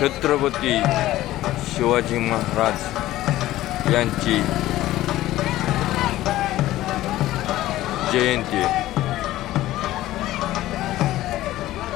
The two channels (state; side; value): quieter; right; 15.4 dB